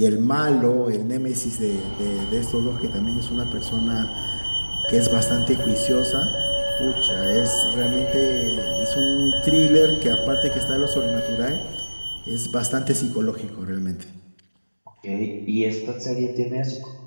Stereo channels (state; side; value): inverted; both; correlation -1.00